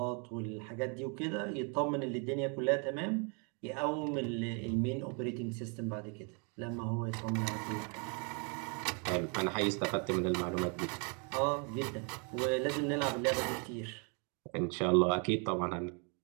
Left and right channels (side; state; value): left; quieter; 36.7 dB